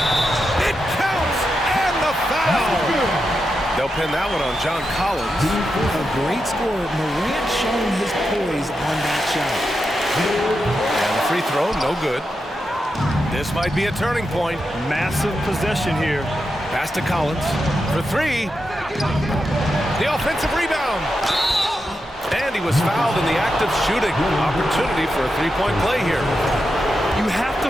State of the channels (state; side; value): normal; both; correlation 0.87